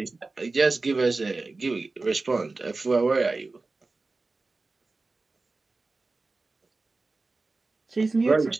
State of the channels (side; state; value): left; quieter; 3.6 dB